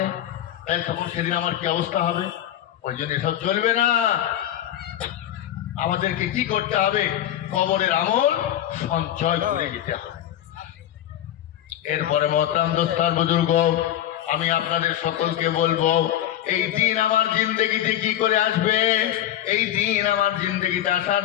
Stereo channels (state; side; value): quieter; right; 11.8 dB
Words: তাই তখন সেদিন আমার কি অবস্থা হবে? ওই জন্য এসব চলবে না। আমাদেরকে কি করতে হবে? কবরের আমল সঞ্চয় করে যেতে হবে। এরপরে মহতরাম দোস্তার বুজুর্গ, আমি আপনাদের সকলকে বলবো, এই দিন আমার জিন্দগিতে কি করে আসবে? এই দিন আমার জিন্দগিতে আসার